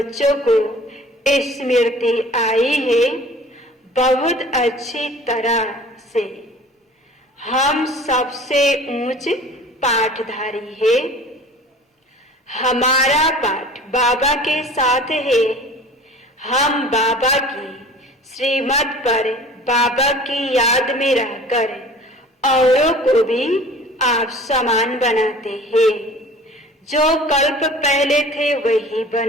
को स्मृति आई है बहुत अच्छी तरह से। हम सबसे ऊंच पाठधारी है। हमारा पाठ बाबा के साथ है। हम बाबा की श्रीमत पर बाबा की याद में रहकर औरों को भी आप समान बनाते हैं। जो कल्प पहले थे वही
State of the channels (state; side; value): normal; both; correlation 0.45